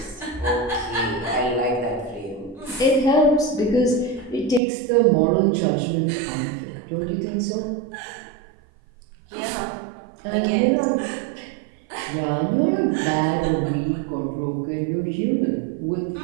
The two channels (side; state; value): left; drops out; at 4.6 s